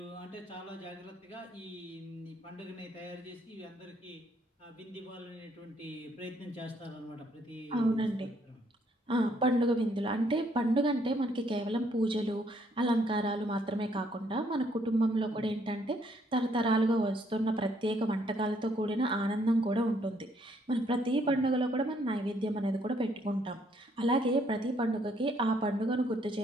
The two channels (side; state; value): both; normal; correlation 0.68